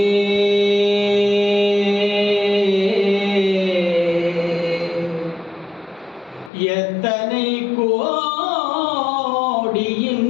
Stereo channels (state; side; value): drops out; right; at 6.5 s